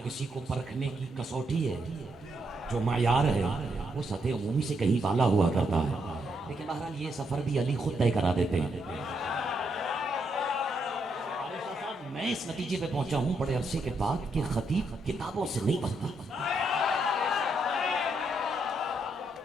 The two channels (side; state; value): both; normal; correlation 0.78